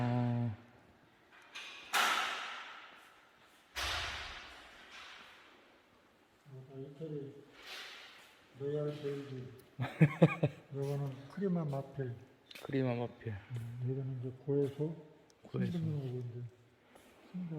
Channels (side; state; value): both; identical; correlation 1.00